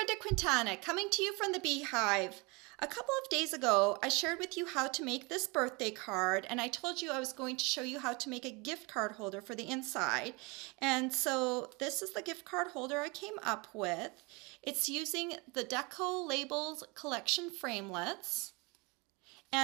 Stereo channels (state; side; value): quieter; left; 27.9 dB